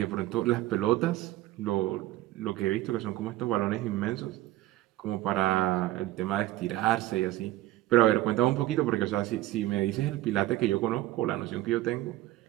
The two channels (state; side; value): quieter; left; 15.9 dB